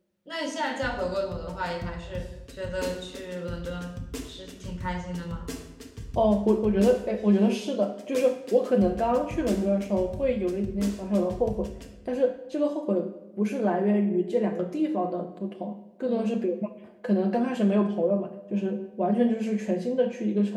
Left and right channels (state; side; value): identical; both; correlation 1.00